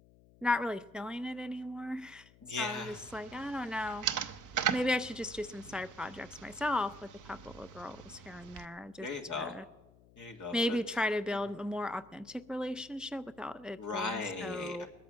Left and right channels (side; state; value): left; noise; hum, 25 dB below the sound